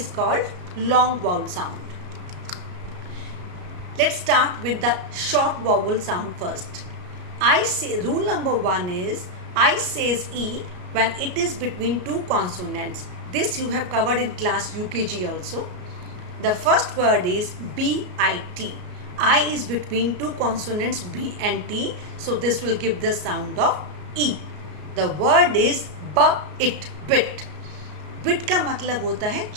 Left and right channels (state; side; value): late; left; 33 ms